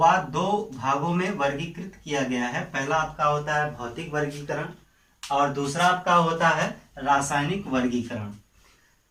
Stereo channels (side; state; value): both; identical; correlation 1.00